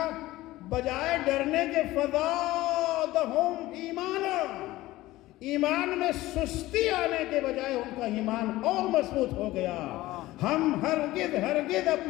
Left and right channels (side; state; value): right; quieter; 17.4 dB